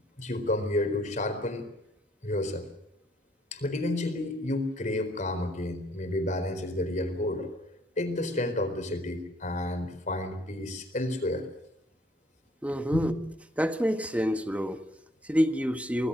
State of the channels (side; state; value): both; normal; correlation 0.64